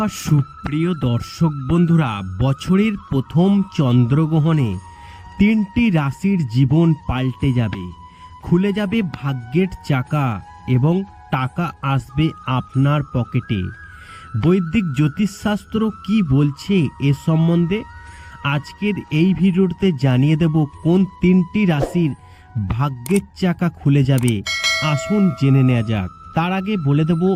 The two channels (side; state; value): both; identical; correlation 1.00